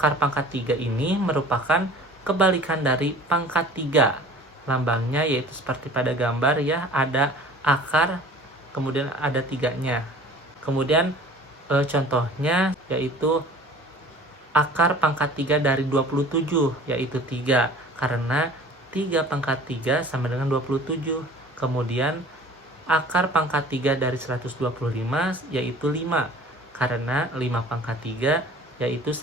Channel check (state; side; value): normal; both; correlation 0.46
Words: pangkat 3 ini merupakan kebalikan dari pangkat 3. Lambangnya yaitu seperti pada gambar ya, ada akar kemudian ada 3-nya. Kemudian contohnya yaitu akar pangkat 3 dari 27, yaitu 3. Karena 3 pangkat 3 sama dengan 27. Kemudian akar pangkat 3 dari 125 yaitu 5. Karena 5 pangkat 3 yaitu